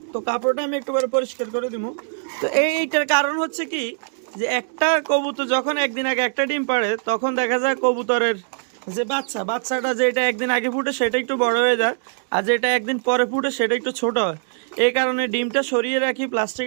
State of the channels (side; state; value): left; silent; digital silence